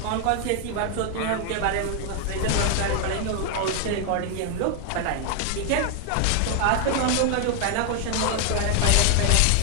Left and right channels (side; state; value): both; different; correlation 0.00